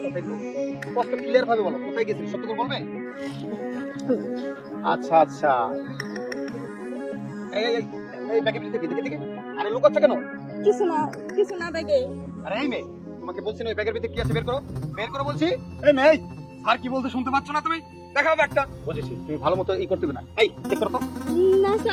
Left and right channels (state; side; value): identical; both; correlation 1.00